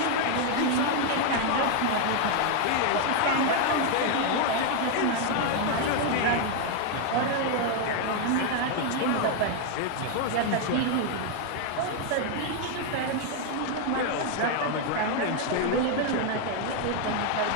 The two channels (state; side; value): different; both; correlation 0.01